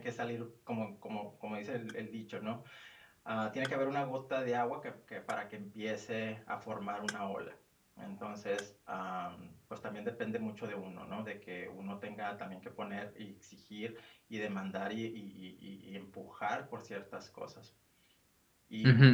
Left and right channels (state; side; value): identical; both; correlation 1.00